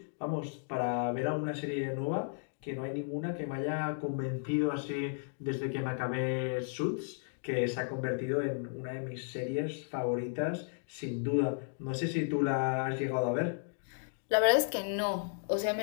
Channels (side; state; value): right; silent; digital silence